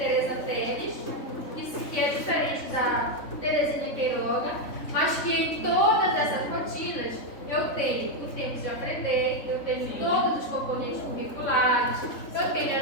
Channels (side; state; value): right; late; 3.6 ms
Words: Teles, que é diferente da Terezinha Queiroga, mas que em todas essas rotinas eu tenho o tempo de aprender, eu tenho todos os componentes curriculares, eu tenho